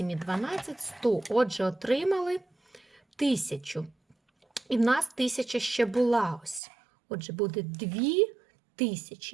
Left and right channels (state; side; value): drops out; left; at 6.6 s